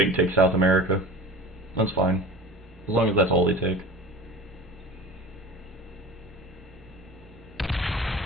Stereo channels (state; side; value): normal; both; correlation 0.37